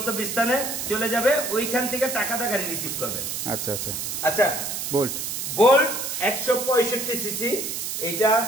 চলে যাবে, ওইখান থেকে টাকাটা গাড়ি রিসিভ করবেন। আচ্ছা, আচ্ছা। আচ্ছা, বোল্ট বোল্ট 165 সিসি। এটা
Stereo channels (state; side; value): noise; right; hiss, 4 dB below the sound